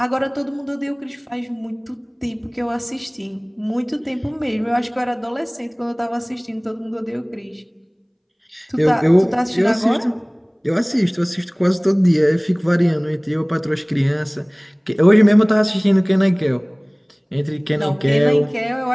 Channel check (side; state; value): both; identical; correlation 1.00